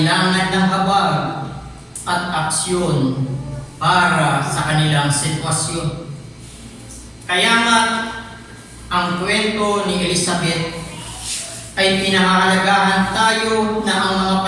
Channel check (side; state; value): both; identical; correlation 1.00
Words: ng habag at aksyon para sa kanilang sitwasyon. Kaya nga, ang kwento ni Elizabeth ay pinahahalagahan tayo